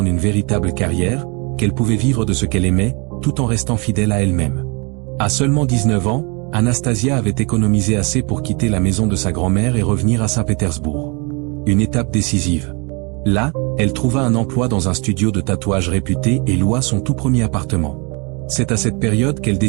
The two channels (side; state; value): left; quieter; 31.1 dB